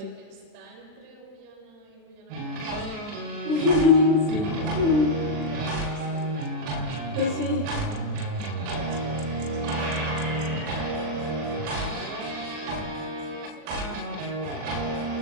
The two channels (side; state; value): left; late; 40 ms